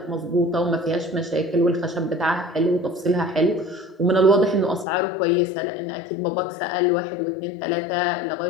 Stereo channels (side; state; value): right; drops out; at 4.9 s